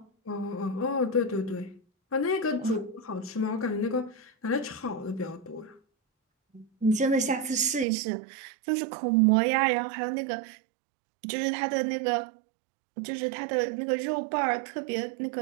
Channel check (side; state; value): left; drops out; at 7.9 s